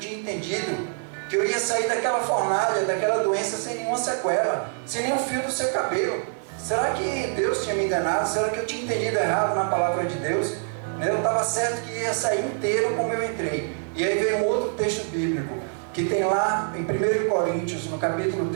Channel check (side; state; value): left; silent; 61 dB below the other